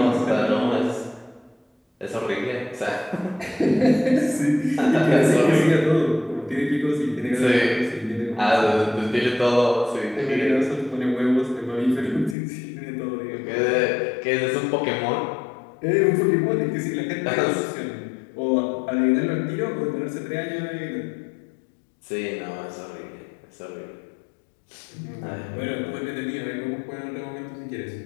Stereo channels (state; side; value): drops out; right; at 12.4 s